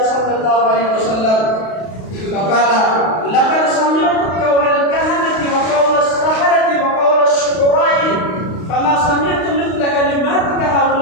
صلى الله عليه وسلم فقال لقد سمعت قول الكهنة وقول السحرة وقول الشعراء فما سمعت مثل كلماتك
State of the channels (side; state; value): right; late; 32 ms